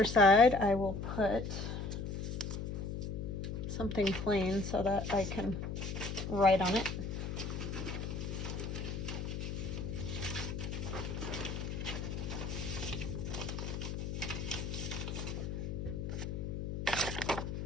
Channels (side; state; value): left; noise; hum, 4 dB below the sound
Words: side, I will put something plain so that I can write on it.